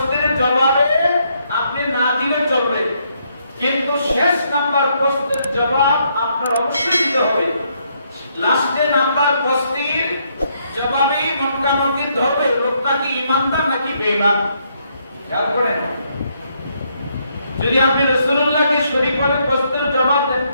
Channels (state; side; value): inverted; both; correlation -0.74